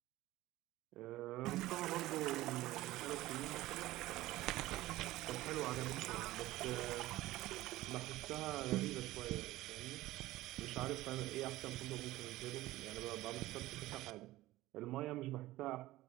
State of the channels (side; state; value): left; quieter; 17.0 dB